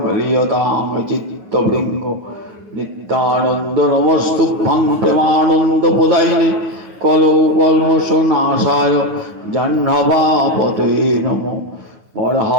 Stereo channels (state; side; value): late; left; 9.5 ms